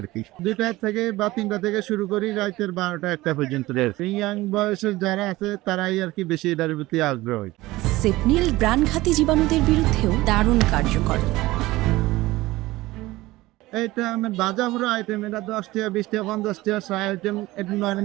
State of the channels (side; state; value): left; quieter; 18.7 dB